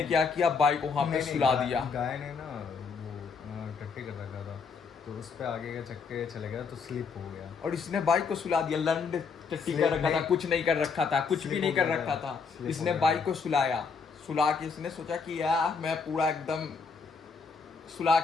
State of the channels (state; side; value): quieter; right; 5.3 dB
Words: क्या किया, बाइक वहां पे सुला दिया। गाय ने ना वो टट्टी कर रखा था, तो उस पे आगे के चक्के चले गया तो स्लिप हो गया। और इसने बाइक को सुला दिया, लंड टट्टी कर रखा था, कुछ नहीं कर रखा था, कुछ भी नहीं कर रखा था। इसने बाइक को सुला के इसने सोचा कि यार मैं पूरा एकदम सुला